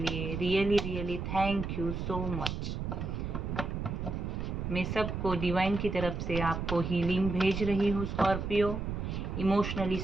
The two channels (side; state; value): right; noise; rumble, 4 dB below the sound